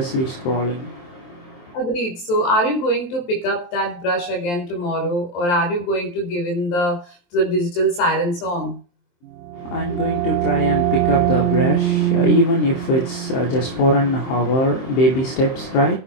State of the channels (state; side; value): late; right; 23 ms